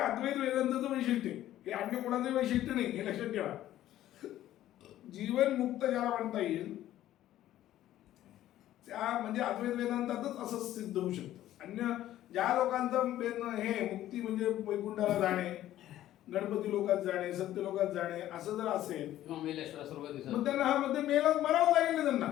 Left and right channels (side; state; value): right; quieter; 13.3 dB